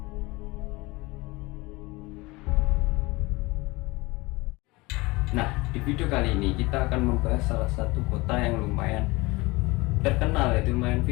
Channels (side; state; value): right; quieter; 22.9 dB